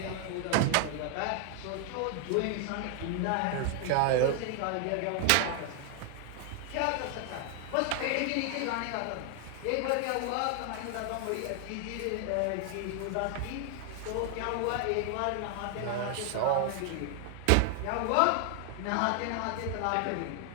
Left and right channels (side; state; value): both; different; correlation 0.00